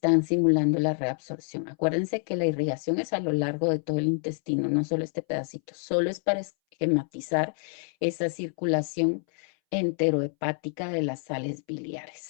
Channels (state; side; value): silent; right; 60 dB below the other